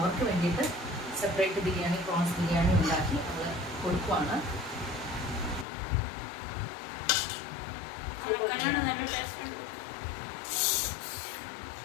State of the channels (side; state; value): right; drops out; at 5.7 s